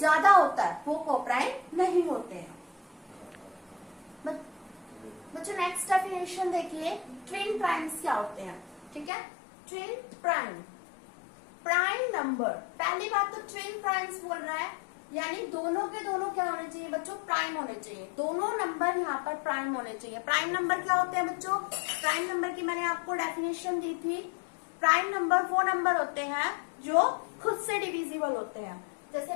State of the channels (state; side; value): drops out; right; at 9.1 s